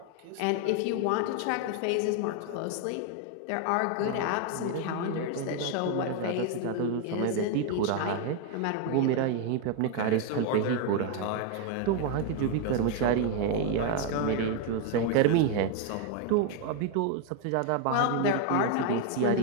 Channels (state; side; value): different; both; correlation 0.01